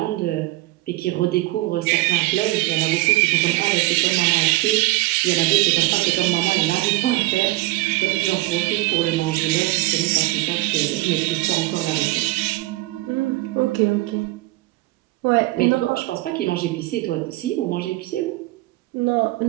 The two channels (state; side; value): quieter; left; 19.2 dB